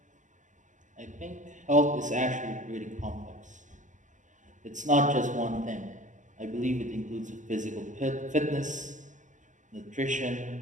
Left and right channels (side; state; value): left; late; 0.37 ms